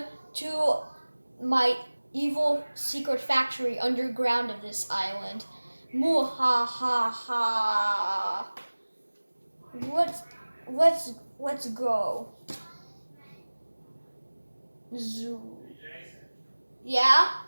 to my evil secret factory underground of this island. Moo ha ha ha. Let's go. Zoo. Yeah?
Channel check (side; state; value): both; inverted; correlation -1.00